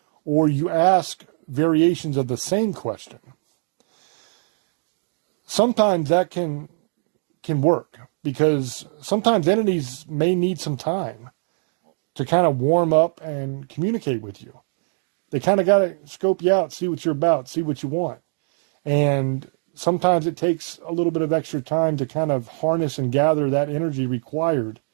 or you ask variations of the same question, sometimes that can work because sometimes entities may need some time to kind of warm up and communicate with you. They kind of got to scope you out, see what you're about, see what you want. And sometimes it takes a little bit of extra time to kind of harness and gather that energy required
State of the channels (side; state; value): left; silent; digital silence